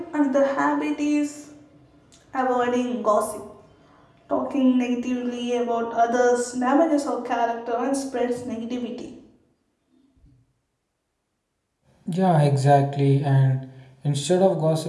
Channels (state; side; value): identical; both; correlation 1.00